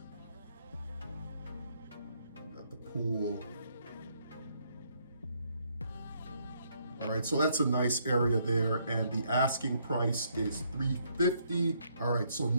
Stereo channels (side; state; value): both; inverted; correlation -0.71